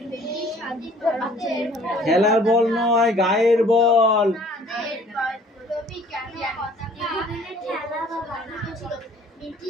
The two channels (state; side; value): normal; both; correlation 0.55